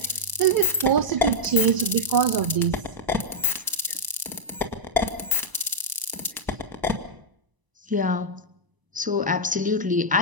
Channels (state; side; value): late; left; 1.0 ms